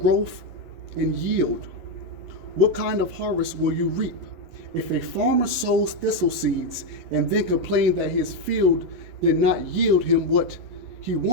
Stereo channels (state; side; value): late; left; 11 ms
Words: and yield, what kind of harvest will you reap? If a farmer sows thistle seeds and then complains that his field did not yield him what he